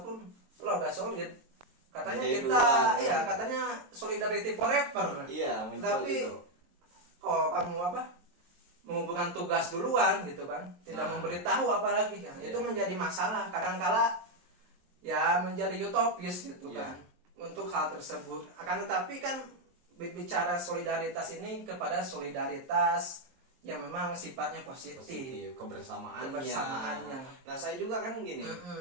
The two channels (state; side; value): late; left; 23 ms